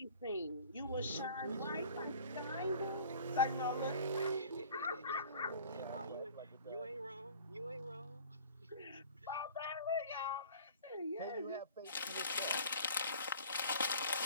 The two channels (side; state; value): both; inverted; correlation -0.47